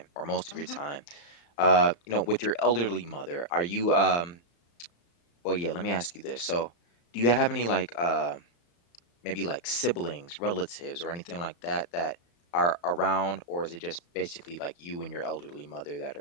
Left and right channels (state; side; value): late; right; 35 ms